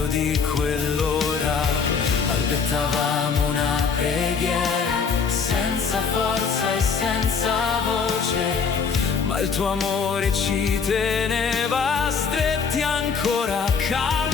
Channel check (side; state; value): right; quieter; 5.8 dB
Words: di quell'ora. Balbettavamo una preghiera, senza forza e senza voce, ma il tuo amore ci teneva stretti ancora